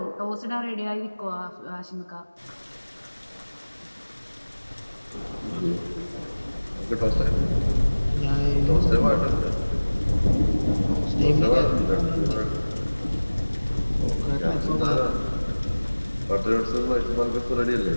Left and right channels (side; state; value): both; inverted; correlation -1.00